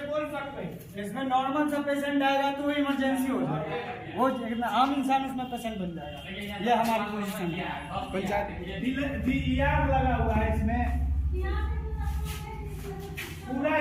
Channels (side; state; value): both; identical; correlation 1.00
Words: कोई शक नहीं। इसमें नॉर्मल सा पेशेंट आएगा तो इमरजेंसी हो जाएगा, वो एक आम इंसान उसमें पेशेंट बन जाएगा। ये हमारी पोजीशन है। पंचायत डीईआर लगा हुआ है इसमें पूरा